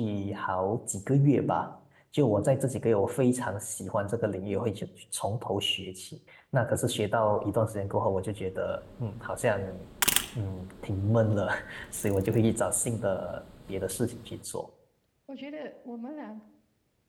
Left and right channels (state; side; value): identical; both; correlation 1.00